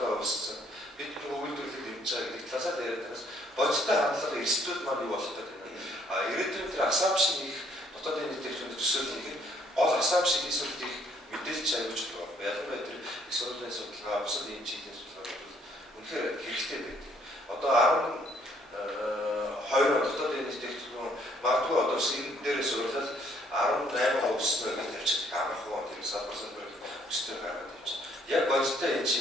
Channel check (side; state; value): both; normal; correlation 0.64